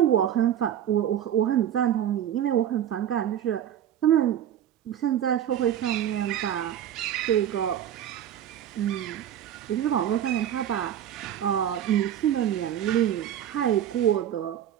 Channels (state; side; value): quieter; left; 10.5 dB